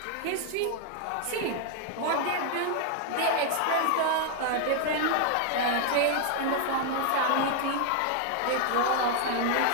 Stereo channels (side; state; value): both; different; correlation 0.00